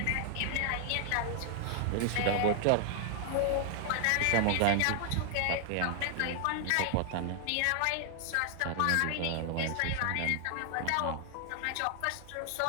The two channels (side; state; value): both; different; correlation 0.00